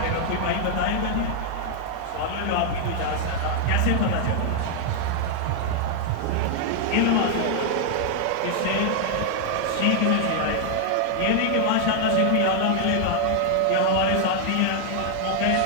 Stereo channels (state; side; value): different; both; correlation 0.00